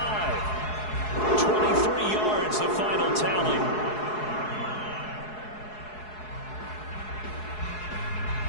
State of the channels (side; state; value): right; late; 4.7 ms